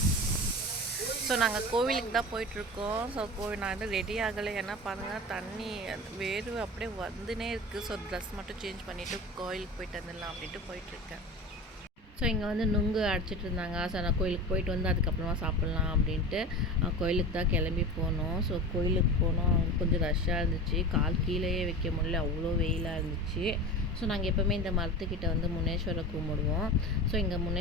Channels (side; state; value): both; normal; correlation 0.31